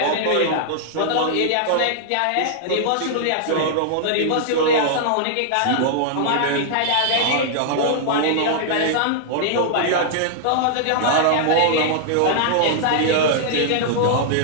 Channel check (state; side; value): different; both; correlation -0.01